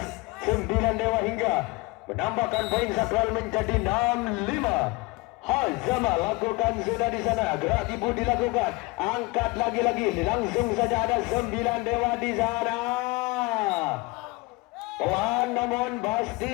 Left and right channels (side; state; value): right; quieter; 24.3 dB